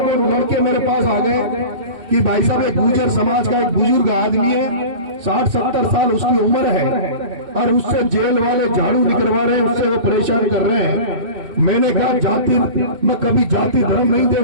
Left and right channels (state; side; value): late; left; 2.6 ms